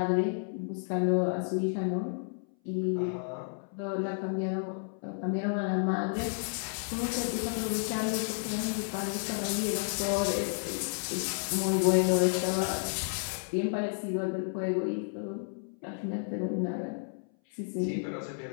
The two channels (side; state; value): right; silent; 57 dB below the other